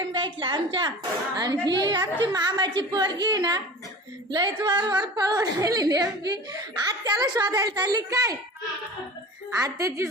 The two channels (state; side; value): normal; both; correlation 0.37